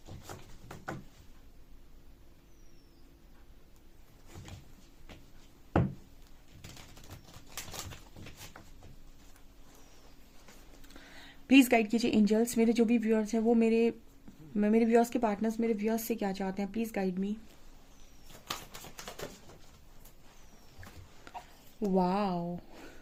प्लीज़ गाइड कीजिए एंजल्स। मेरे जो भी व्यूअर्स हैं वो मेरे व्यूअर्स के पार्टनर्स मेरे व्यूअर्स से क्या चाहते हैं, प्लीज़ गाइड मी। वाओ।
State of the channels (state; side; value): identical; both; correlation 1.00